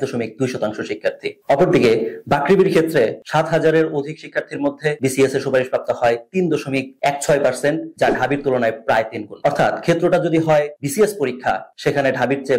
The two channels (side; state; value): both; identical; correlation 1.00